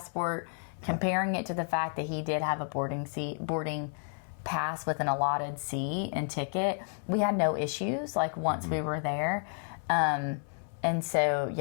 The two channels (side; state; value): right; silent; 57 dB below the other